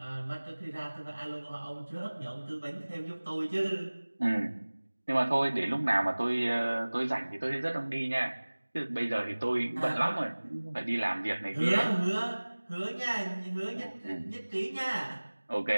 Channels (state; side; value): inverted; both; correlation -1.00